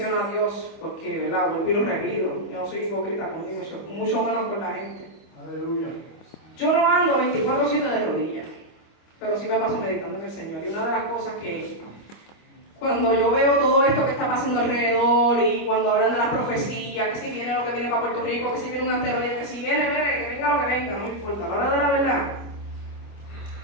a Dios, porque, ¿verdad? Vuelvo y lo repito. Yo no soy hipócrita contigo, mucho menos con la gente. Aleluya. Yo no ando 24/7 de rodillas, pero sí me paso meditando en el Señor. Y una de las cosas que, cuando yo veo todo esto que está pasando alrededor y cuando hablan de las profecías, que si viene lo que viene para Puerto Rico, que si viene un asteroide, que si viene, que venga lo que venga, no me importa. A la hora de la verdad,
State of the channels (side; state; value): right; late; 25 ms